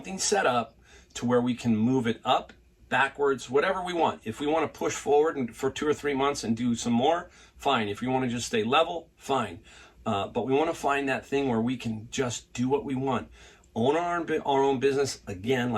set up to where we can move it up, backwards, whatever we want. If we want to push forward for 2 or 3 months and do some more, fine. If we want to just stay level, fine. But we want to find that thing where we can just do what we want. Own our own business, again,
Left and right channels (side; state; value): both; identical; correlation 1.00